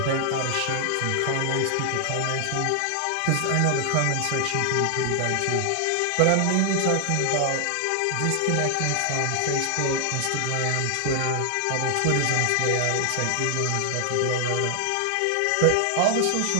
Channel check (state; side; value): different; both; correlation 0.00